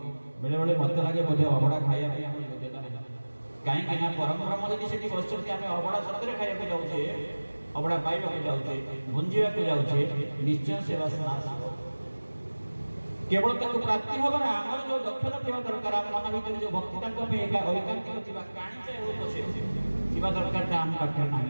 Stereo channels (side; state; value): both; inverted; correlation -1.00